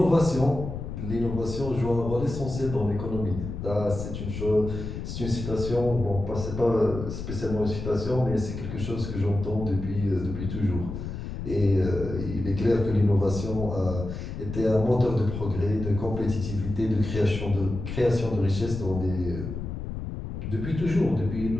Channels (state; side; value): noise; left; rumble, 7 dB below the sound